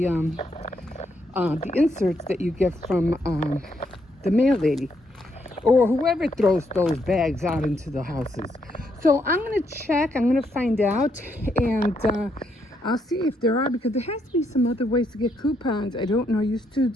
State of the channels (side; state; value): both; normal; correlation 0.76